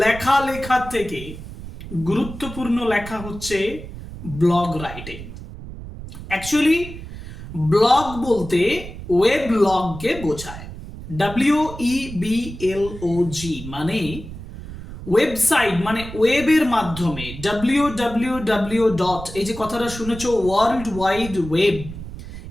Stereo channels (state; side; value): noise; right; rumble, 12 dB below the sound